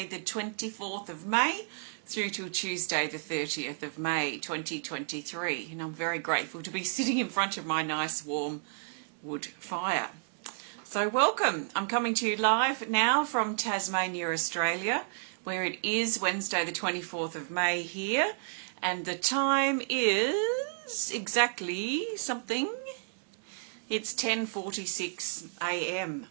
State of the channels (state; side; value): silent; left; digital silence